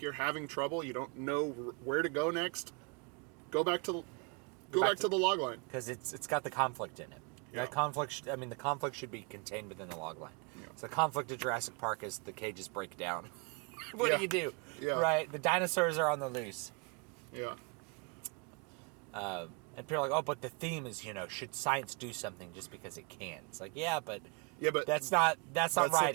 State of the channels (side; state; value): left; quieter; 31.2 dB